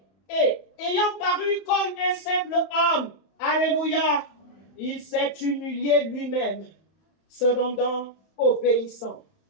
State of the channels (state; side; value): late; right; 31 ms